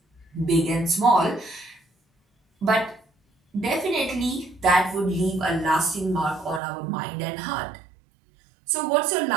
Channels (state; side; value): drops out; left; at 6.6 s